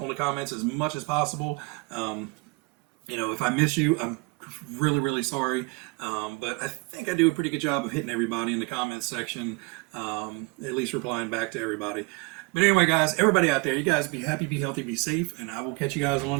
on the comments as much as possible. If I miss you, I'm really, really sorry. But I think I do a pretty good job of hitting everybody in the comments section, at least replying back to everybody. But anyway, guys, everybody out there, you guys be happy, be healthy, be safe, and I will catch you guys on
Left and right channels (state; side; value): quieter; left; 28.9 dB